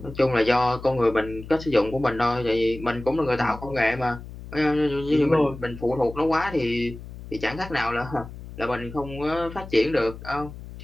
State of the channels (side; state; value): left; noise; hum, 13 dB below the sound